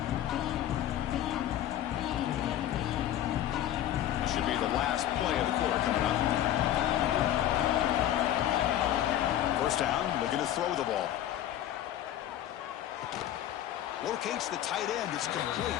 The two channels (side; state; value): right; quieter; 12.0 dB